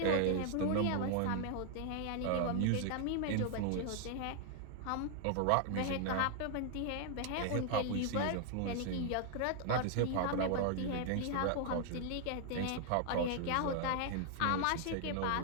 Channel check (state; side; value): different; both; correlation 0.00